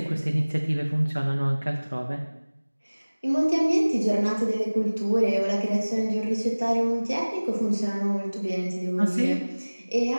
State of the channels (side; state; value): both; inverted; correlation -1.00